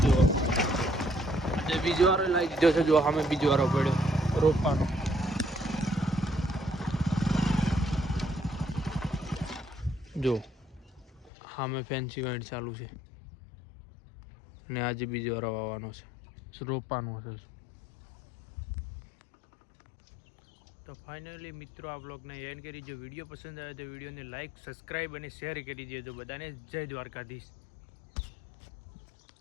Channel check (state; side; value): drops out; right; at 11.3 s